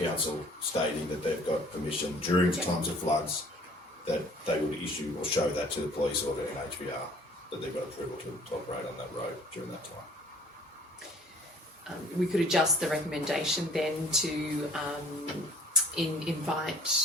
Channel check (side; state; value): both; normal; correlation 0.52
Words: stating that they've got permission during times of floods that they would issue or show that to the police or the NHBR that they've got approval to operate on that road during that time. We could adjust the recommendation then to invite